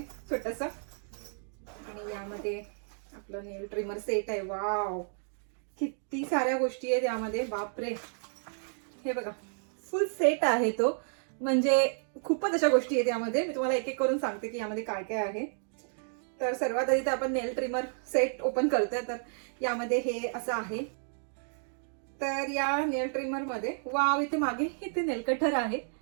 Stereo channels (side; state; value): left; silent; digital silence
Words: छोटस, आणि यामध्ये आपलं नेल ट्रिमर सेट आहे. वाव, किती साऱ्या गोष्टी आहेत यामध्ये, बापरे. हे बघा, फुल सेट आहे तो, म्हणजे खूपच अशा गोष्टी आहेत यामध्ये. मी तुम्हाला एक एक करून सांगते की यामध्ये काय काय आहे. तर सर्वात आधी तर आपण नेल ट्रिमर सेट ओपन करतोय. तर यामध्ये हे असं आहे. तर या नेल ट्रिमर मध्ये वाव, इथे मागे इथे नेल कटर आहे